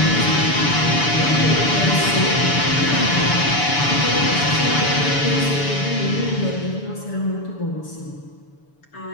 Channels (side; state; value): right; late; 6.9 ms